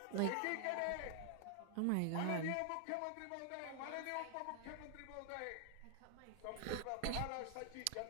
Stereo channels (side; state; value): both; different; correlation 0.00